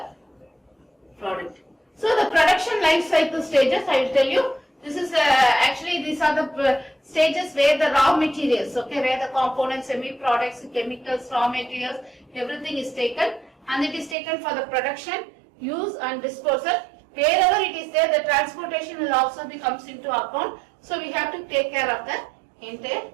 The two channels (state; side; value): drops out; left; at 14.2 s